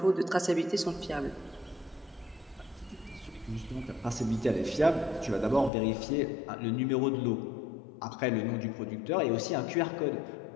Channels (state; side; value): drops out; right; at 5.7 s